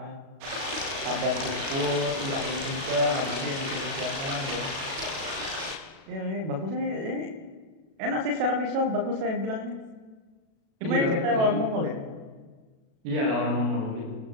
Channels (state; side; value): late; left; 37 ms